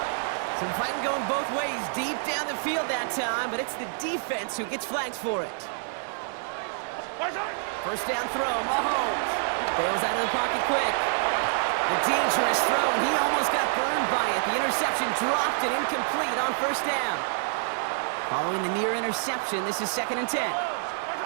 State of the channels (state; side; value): silent; left; digital silence